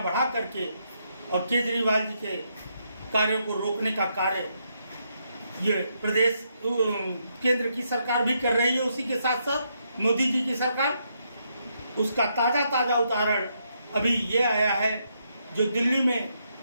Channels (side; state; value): both; inverted; correlation -0.78